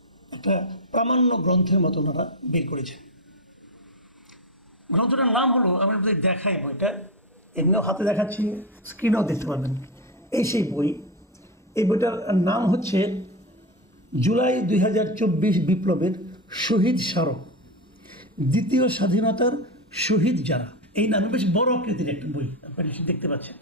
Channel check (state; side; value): normal; both; correlation 0.14